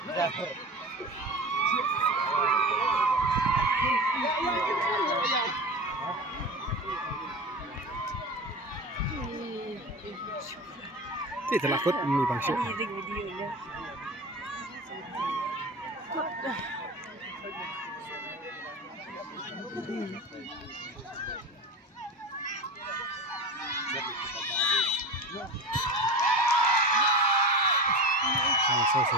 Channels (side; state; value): both; normal; correlation 0.30